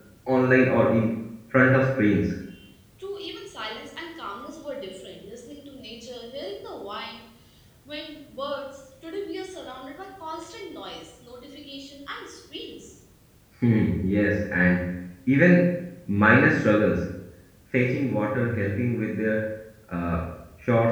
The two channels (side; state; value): both; identical; correlation 1.00